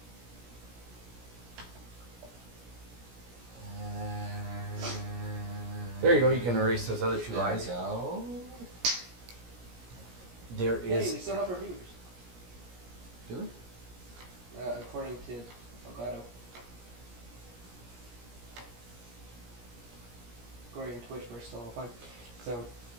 there you go. You can erase those other two There we lines. go. There Hey, is. we still have reviewers. Do we? According to Elgato. According to Twitch, we're still fine. So,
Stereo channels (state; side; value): late; left; 17 ms